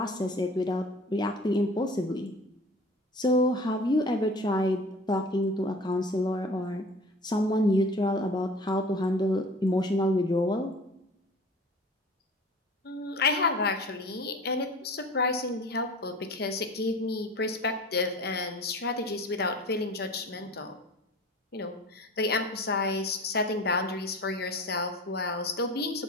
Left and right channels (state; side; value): normal; both; correlation 0.41